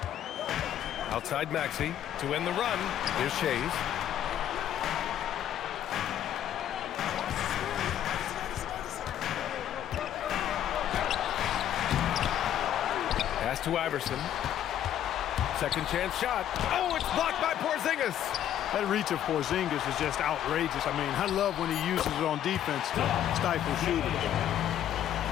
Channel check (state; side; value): quieter; right; 10.9 dB